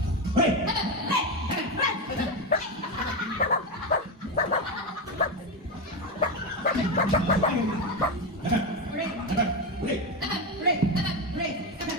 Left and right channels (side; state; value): both; normal; correlation 0.12